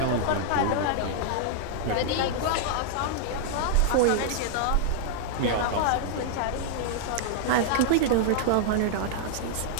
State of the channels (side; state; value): both; different; correlation -0.01